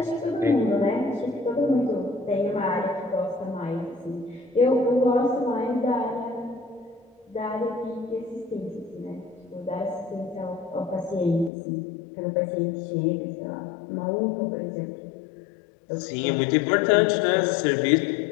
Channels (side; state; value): right; drops out; at 11.5 s